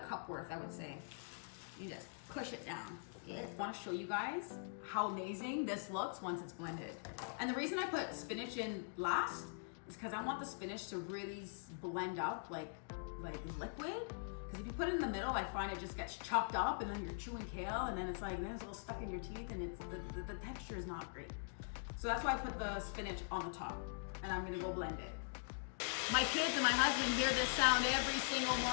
cup worth, I would say. You just push it down. I want to show you guys how amazing this looks once it's blended. And the reason I put spinach in last is because I want the spinach to really blend up like liquid. Because if you put it in the middle, I find it just gets chopped up and then you're chewing kale and then it's like, then it's all stuck in your teeth and it's the texture is not great. So that's why I put the spinach on the top and I'm gonna go blend it. My kids and my husband hear this sound every single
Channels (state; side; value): silent; right; digital silence